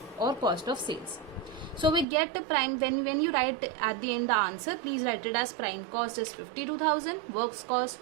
or cost of sales. So we get the prime, when you write at the end the answer, please write it as prime cost is 52,000, works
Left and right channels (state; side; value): drops out; left; at 2.1 s